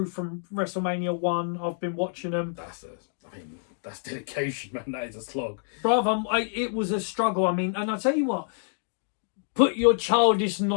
from WrestleMania 1, I've been watching them. That's dedication, man. That is a slog. Bruv, it was a struggle. I mean, and I'll tell you what, put your childish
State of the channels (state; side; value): silent; right; digital silence